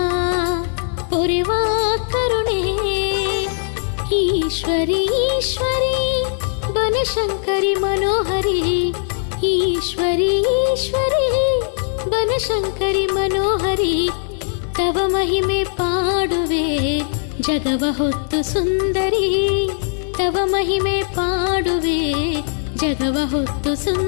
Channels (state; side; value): silent; right; digital silence